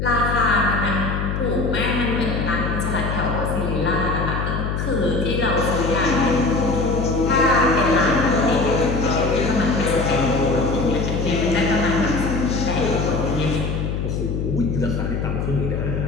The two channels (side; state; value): left; noise; hum, 2 dB below the sound